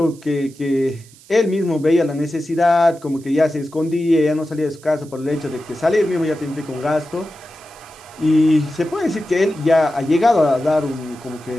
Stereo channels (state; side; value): noise; right; hiss, 24 dB below the sound